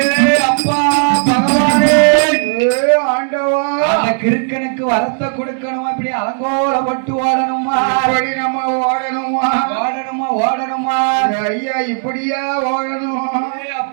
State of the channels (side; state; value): left; silent; 61 dB below the other